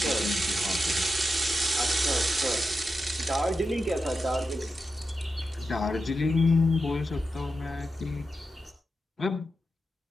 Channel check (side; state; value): both; normal; correlation 0.89